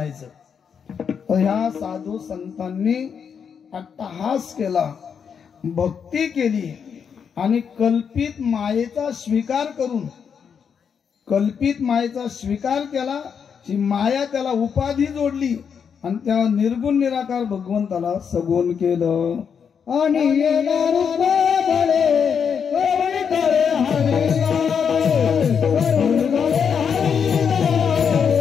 तर ह्या साधू संतांनी अट्टहास केला, भक्ती केली आणि कल्पित मायेचा स्वीकार करून, कल्पित मायेचा स्वीकार केला. ही माया त्याला उपाधी जोडली आणि त्या निर्गुण निराकार भगवंताला सगुण केलं. आणि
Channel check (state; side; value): quieter; right; 6.9 dB